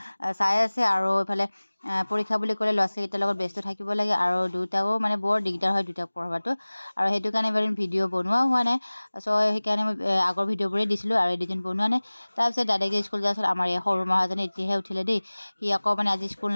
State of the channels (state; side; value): inverted; both; correlation -1.00